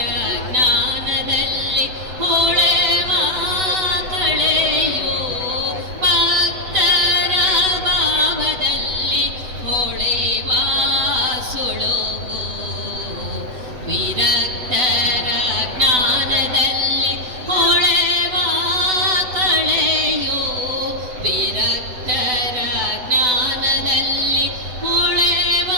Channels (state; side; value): late; left; 8.0 ms